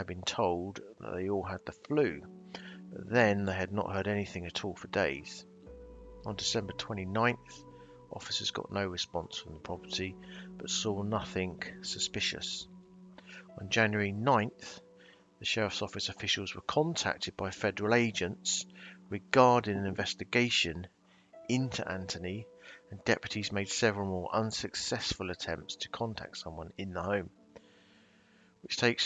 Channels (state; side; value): identical; both; correlation 1.00